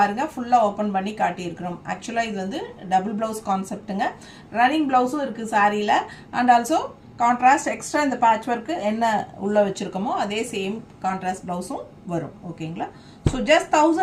ஃபுல்லாக ஓப்பன் பண்ணி காட்டியிருக்கிறோம். ஆக்சுவலாக இது வந்து டபுள் ப்ளவுஸ் கான்செப்ட்டுங்க. ரன்னிங் ப்ளவுஸும் இருக்குது சாரியில். அண்ட் ஆல்சோ கான்ட்ராஸ்ட் எக்ஸ்ட்ரா இந்த பேட்ச் ஒர்க்கு என்ன உள்ளே வச்சுருக்கோமோ அதே சேம் கான்ட்ராஸ்ட் ப்ளவுஸும் வரும். ஓகேங்களா, ஸோ ஜஸ்ட்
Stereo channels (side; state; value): both; identical; correlation 1.00